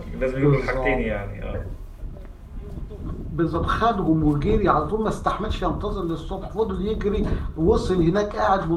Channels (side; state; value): both; identical; correlation 1.00